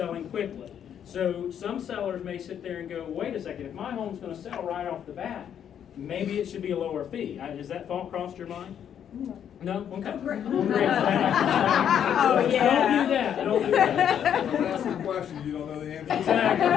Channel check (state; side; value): quieter; right; 9.1 dB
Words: quickly. So some sellers may sit there and go, wait a second, if my home's gonna sell right off the bat, maybe it should be a lower fee. Has that thought crossed your mind? No? Okay. Great. Oh, yeah. Don't do that. Don't ask a question you don't know the answer to.